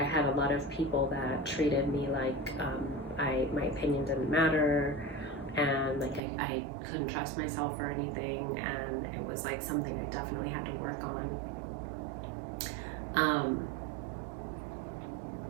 had a lot of people that treated me like my opinion didn't matter, and like I couldn't trust myself or anything, and it was like something I definitely had to work on.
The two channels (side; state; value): left; drops out; at 6.2 s